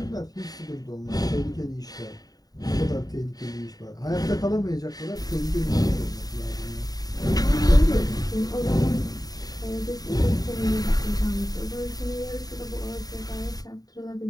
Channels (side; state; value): right; late; 0.18 ms